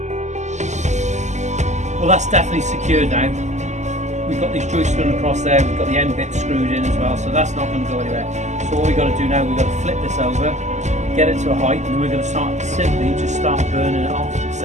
Well, that's definitely secured now. We've got these joists going across there, we've got the end bit screwed in as well, so that's not going to go anywhere. So what we've got to do now, we've got to flip this over, get it to a height, and then we're going to start simply just start burning it off and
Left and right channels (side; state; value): left; late; 0.34 ms